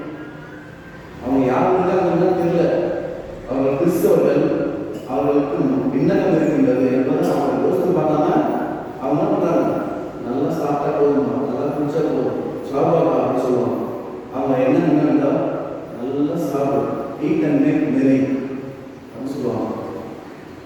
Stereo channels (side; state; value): both; identical; correlation 1.00